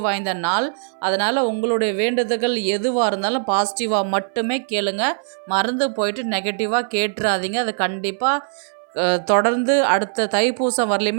வாய்ந்த நாள். அதனால் உங்களுடைய வேண்டுதல்கள் எதுவாக இருந்தாலும் பாசிட்டிவாக மட்டுமே கேளுங்க. மறந்து போயிட்டு நெகட்டிவாக கேட்டுறாதீங்க. அது கண்டிப்பாக தொடர்ந்து அடுத்த தைப்பூசம்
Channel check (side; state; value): left; silent; 61 dB below the other